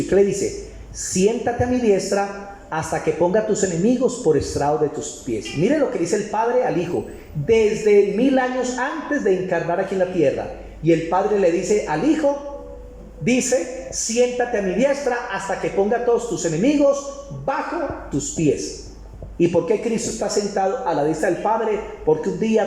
¿Y qué le dice? Siéntate a mi diestra hasta que ponga a tus enemigos por estrado de tus pies. Mire lo que dice el Padre al Hijo desde 1000 años antes de encarnar aquí en la tierra. Y el Padre le dice al Hijo, dice: siéntate a mi diestra hasta que ponga a todos tus enemigos bajo tus pies. ¿Y por qué Cristo está sentado a la diestra del Padre? Porque un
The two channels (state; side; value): identical; both; correlation 1.00